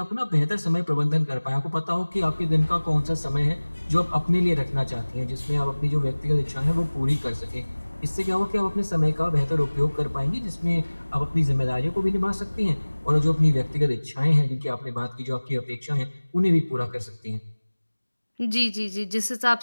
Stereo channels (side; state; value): both; inverted; correlation -1.00